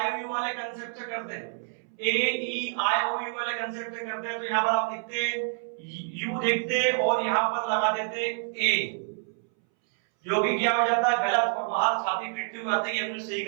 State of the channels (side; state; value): left; silent; 59 dB below the other